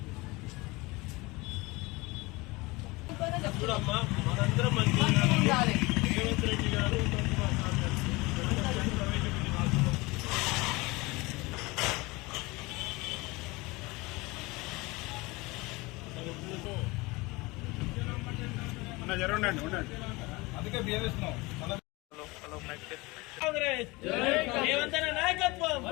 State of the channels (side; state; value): right; quieter; 23.5 dB